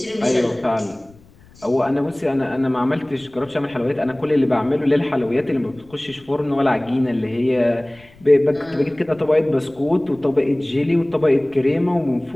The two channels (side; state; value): left; noise; rumble, 26 dB below the sound